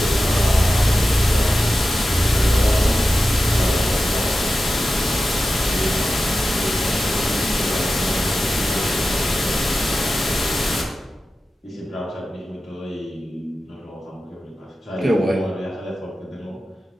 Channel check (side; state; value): both; normal; correlation 0.93